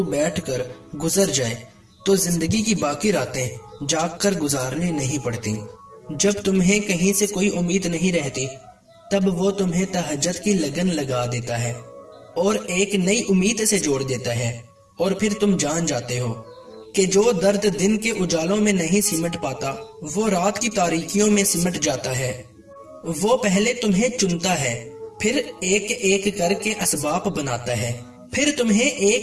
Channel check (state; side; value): identical; both; correlation 1.00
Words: بیٹھ کر گزر جائے تو زندگی کی باقی راتیں جاگ کر گزارنی نہیں پڑتی۔ جب تمہیں کہیں سے کوئی امید نہیں رہتی تب وہ تمہیں تہجد کی لگن لگا دیتا ہے اور ایک نئی امید سے جوڑ دیتا ہے، اور پھر تم جان جاتے ہو کہ جو درد دن کے اجالوں میں نہیں سمٹ پاتا وہ رات کی تاریکیوں میں سمٹ جاتا ہے۔ وہ پہلے تمہیں چنتا ہے، پھر ایک ایک کر کے اسباب بناتا ہے، پھر تمہیں